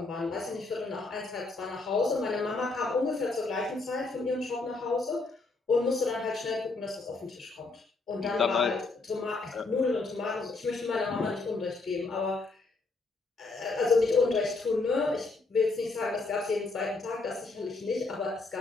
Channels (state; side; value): quieter; right; 3.6 dB